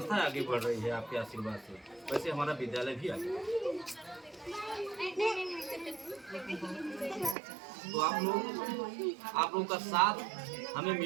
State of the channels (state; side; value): drops out; left; at 7.4 s